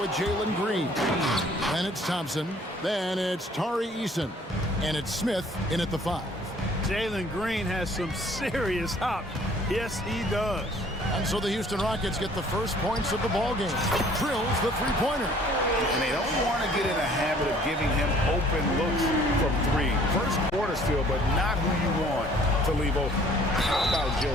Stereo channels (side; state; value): both; normal; correlation 0.56